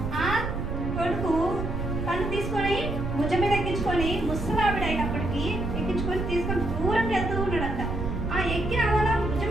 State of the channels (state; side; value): noise; right; rumble, 4 dB below the sound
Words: ఆ కొడుకు తను తీసుకొని భుజం మీద ఎక్కించుకొని ముసలావిడ అయినప్పటికీ ఎక్కించుకొని తీసుకొని దూరంగా వెళ్తూ ఉన్నాడంట. ఆ ఎక్కిన అలా భుజం